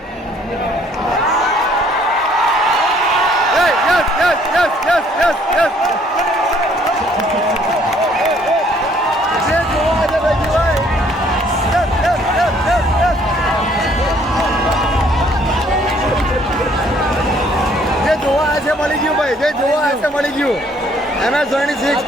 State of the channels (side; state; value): both; normal; correlation 0.62